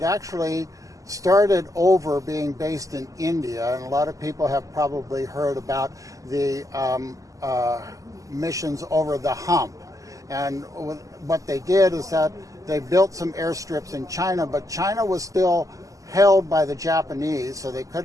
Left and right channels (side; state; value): left; late; 0.16 ms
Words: actually started over being based in India, and a lot of people have probably heard about the missions over the hump. And what they did is that they built some airstrips in China, but China was still held by the Japanese, so they